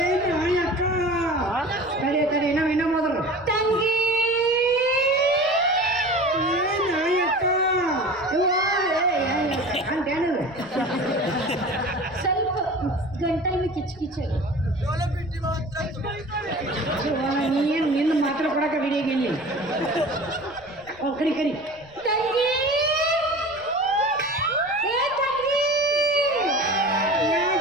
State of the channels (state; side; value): noise; left; rumble, 25 dB below the sound